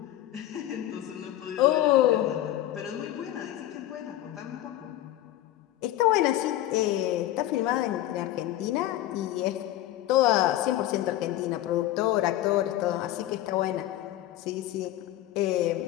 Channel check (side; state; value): right; quieter; 13.9 dB